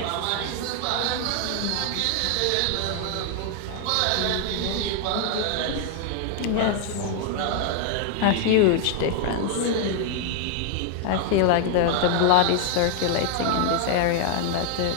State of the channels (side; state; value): both; different; correlation 0.00